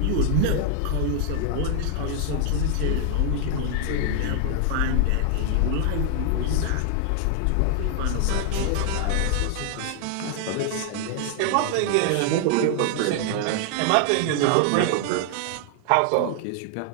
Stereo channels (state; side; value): different; both; correlation 0.00